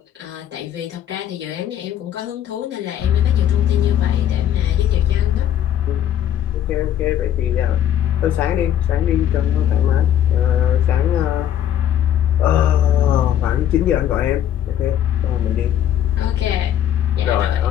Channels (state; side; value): quieter; right; 10.6 dB